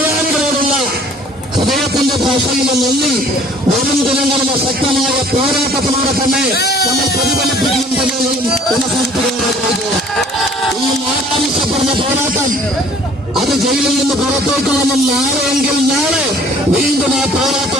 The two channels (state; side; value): normal; both; correlation 0.54